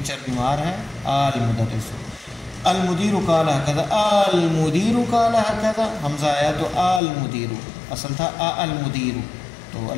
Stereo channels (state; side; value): drops out; right; at 7.0 s